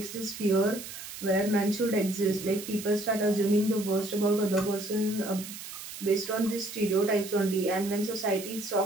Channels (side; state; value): right; noise; hiss, 11 dB below the sound